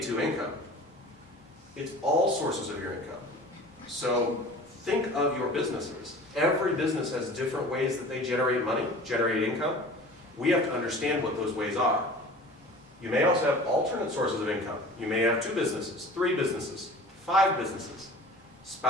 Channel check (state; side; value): normal; both; correlation 0.41